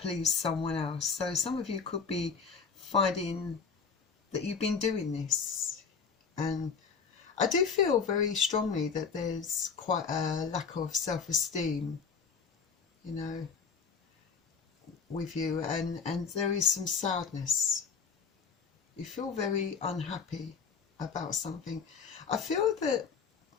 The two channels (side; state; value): right; quieter; 5.7 dB